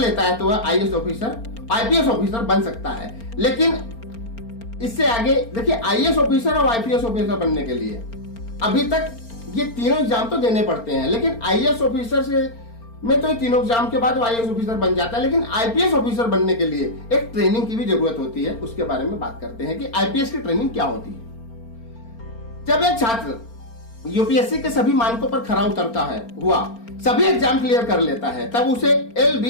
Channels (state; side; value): late; right; 4.4 ms